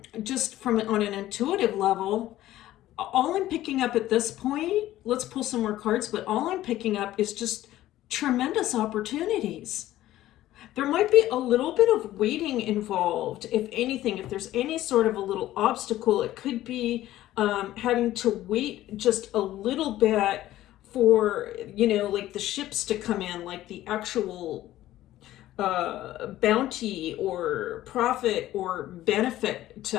just on an intuitive level, all I'm picking up at this point, let's pull some more cards, but all I'm picking up is just tremendous opportunities. There might be a little bit of waiting involved, if anything. If there's any sort of a little obstacle, it could be having to wait just a little bit for, like the ships to come in, like the actual bounty or profit or benefit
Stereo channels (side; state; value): right; quieter; 14.5 dB